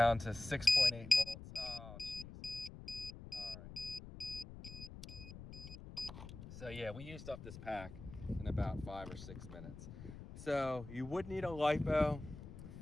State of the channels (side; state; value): left; noise; rumble, 12 dB below the sound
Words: to 6.8 volts. Oh, geez. All right. So yeah, we used up this pack in about 5 or 6 minutes. So you would need a lipo